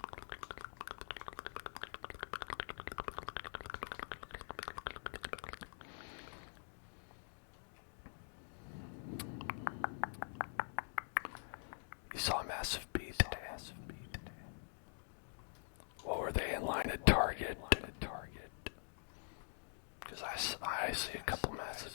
You saw a massive bee today. What were they in line at Target? Because I see a couple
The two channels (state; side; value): silent; right; digital silence